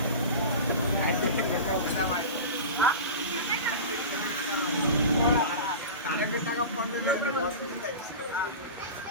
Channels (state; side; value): inverted; both; correlation -0.30